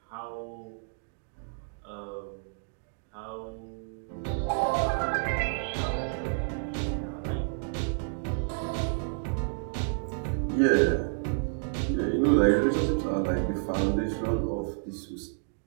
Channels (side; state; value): left; silent; digital silence